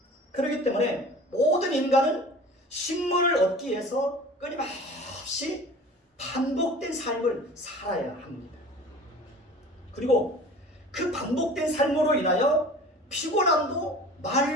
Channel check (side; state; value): both; normal; correlation 0.41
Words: 그렇기 때문에 모든 인간은 식물을 얻기 위해서 끊임없이 반복된 삶을 살아야 합니다. 그리고 그 반복된 삶으로 인하여 피곤함도